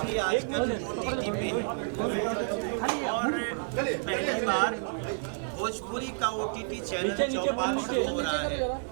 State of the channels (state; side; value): silent; left; 58 dB below the other